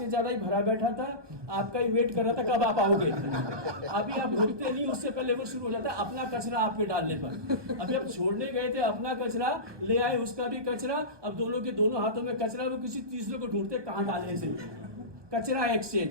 ज्यादा ही भरा बैठा था, आपका ही वेट कर रहा था कब आप आओगे। अभी आप रुकते नहीं, उससे पहले वो शुरू हो जाता है अपना कचरा आप पे डालने पर। अभी आप छोड़ने गए थे अपना कचरा, ले आए उसका भी कचरा, अब दोनों के दोनों हाथों में कचरा, वो किसी तीसरे को ढूंढते कहाँ डाले इसे। कचरा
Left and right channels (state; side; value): late; left; 1.2 ms